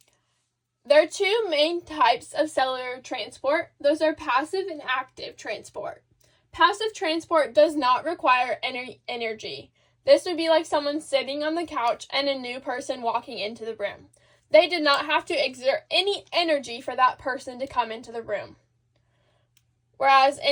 There are two main types of cellular transport. Those are passive and active transport. Passive transport does not require energy. This would be like someone sitting on the couch and a new person walking into the room. They did not have to exert any energy for that person to come into the room. Whereas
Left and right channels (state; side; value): identical; both; correlation 1.00